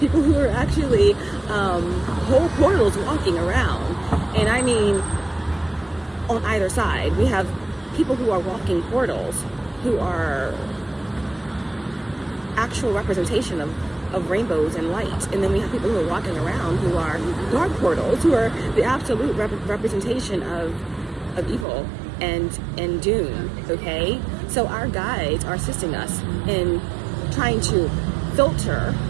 who are actually whole portals walking around, and I mean, on either side, we have people who are walking portals, who are actual representation of rainbows and light. And then we have people who are walking around who are dark portals, who are the absolute representation of evil and doom, okay? So our guides are assisting us in trying to filter,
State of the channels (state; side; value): drops out; left; at 21.7 s